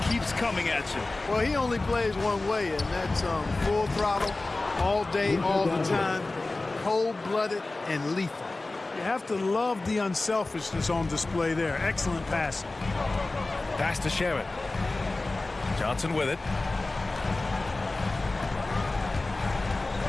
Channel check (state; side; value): quieter; right; 3.1 dB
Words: keeps coming at you. Well, he only plays one way, and that's full throttle, all day, all the time, cold-blooded and lethal. You have to love the unselfishness on display there. Excellent passing. Pass to Shaman. Johnson with it.